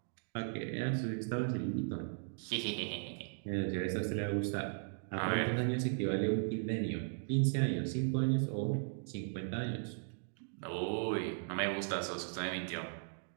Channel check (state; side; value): silent; left; digital silence